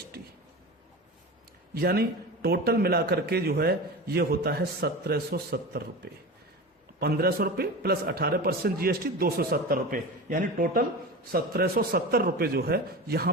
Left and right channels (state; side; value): normal; both; correlation 0.29